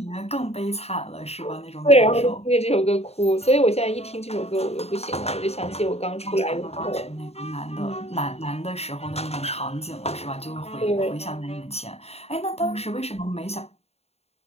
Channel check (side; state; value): right; late; 0.30 ms